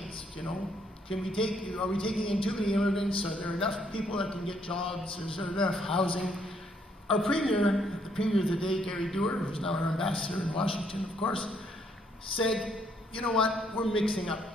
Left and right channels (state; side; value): normal; both; correlation 0.70